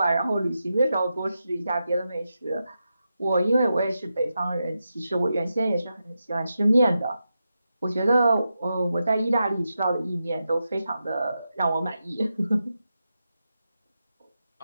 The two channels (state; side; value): inverted; both; correlation -0.88